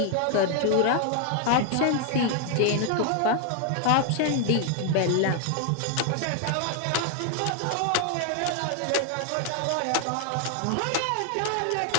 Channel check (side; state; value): both; different; correlation 0.00